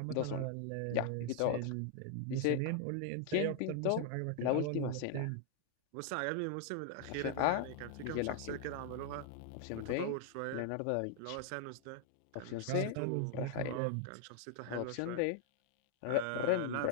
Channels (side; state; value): both; different; correlation 0.00